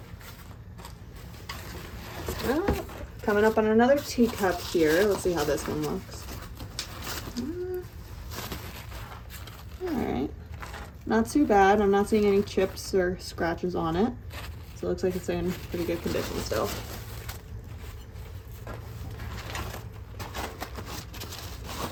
Coming up on another teacup here. Let's see how this one looks. All right. Not too bad. I'm not seeing any chips or scratches on it. So it looks like it's in pretty good condition still.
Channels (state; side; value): identical; both; correlation 1.00